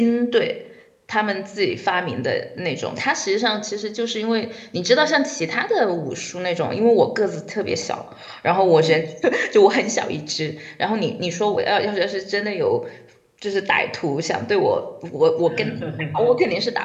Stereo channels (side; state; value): both; identical; correlation 1.00